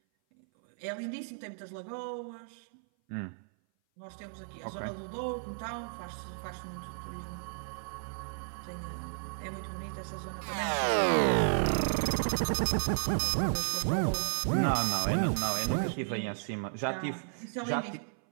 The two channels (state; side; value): silent; left; 55 dB below the other